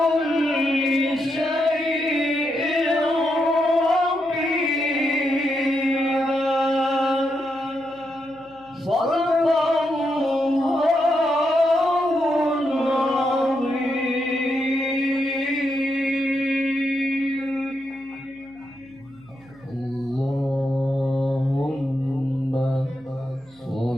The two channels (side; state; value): right; noise; hum, 29 dB below the sound